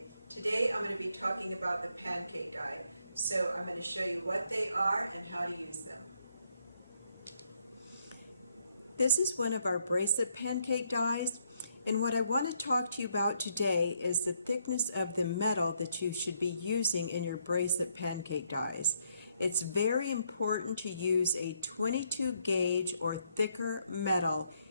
Today I'm going to be talking about the pancake die. So I'm going to show you what they are and how to use them. This is one of our bracelet pancake dies, and what I want to talk to you about today is the thickness of the metal that you should be using in your bracelet pancake dies. It's very important to use a 22 gauge or thicker metal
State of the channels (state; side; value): inverted; both; correlation -0.74